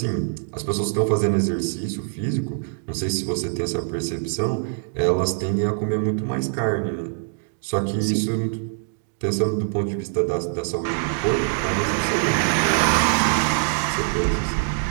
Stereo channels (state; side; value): silent; left; 63 dB below the other